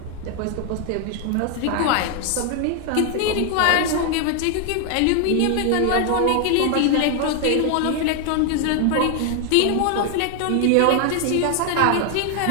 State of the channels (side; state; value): both; different; correlation 0.00